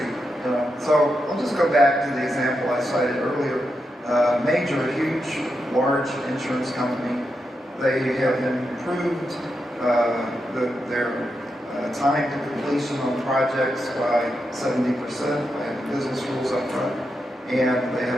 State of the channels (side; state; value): both; normal; correlation 0.85